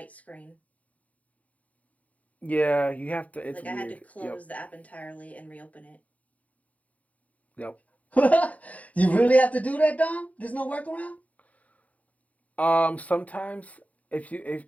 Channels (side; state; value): right; late; 0.070 ms